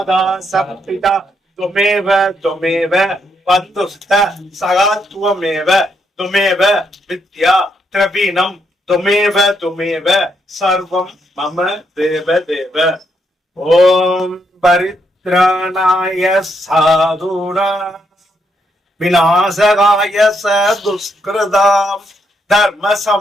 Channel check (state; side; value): normal; both; correlation 0.77